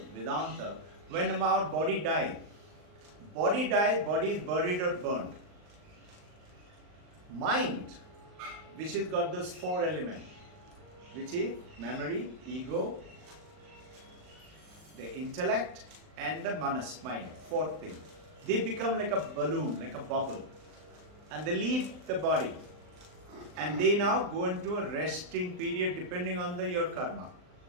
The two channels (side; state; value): left; late; 39 ms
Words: Vedanta, when our body dies, body is buried or burned. Mind, which has got those four elements, which is memory, ego, the intellect, and the manas, mind, fourth thing. They become like a balloon, like a bubble, and they leave the body. And they now go into a resting period depending on your karma.